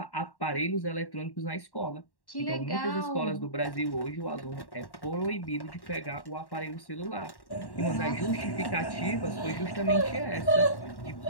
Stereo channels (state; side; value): late; right; 1.1 ms